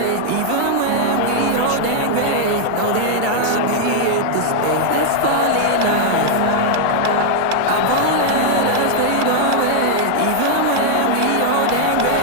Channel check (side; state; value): both; different; correlation 0.00